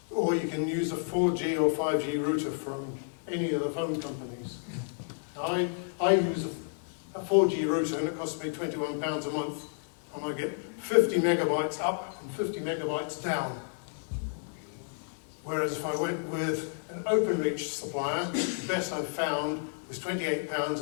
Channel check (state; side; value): silent; right; 57 dB below the other